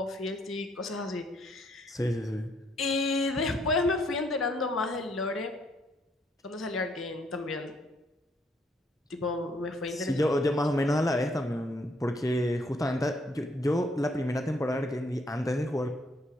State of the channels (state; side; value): normal; both; correlation 0.69